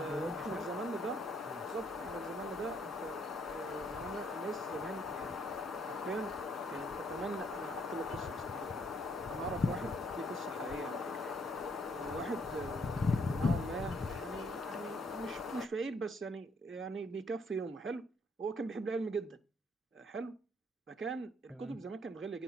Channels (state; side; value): normal; both; correlation 0.68